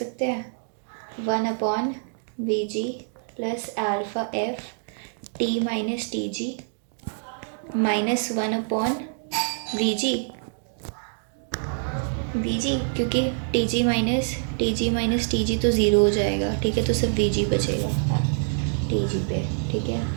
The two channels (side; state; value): left; silent; digital silence